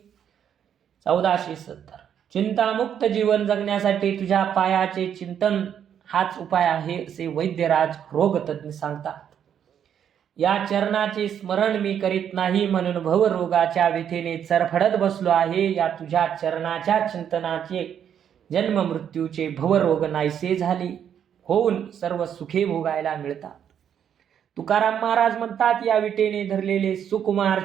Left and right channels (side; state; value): left; quieter; 8.9 dB